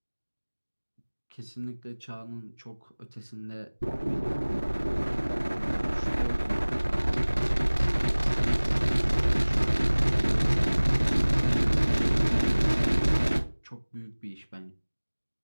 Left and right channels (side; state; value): both; inverted; correlation -1.00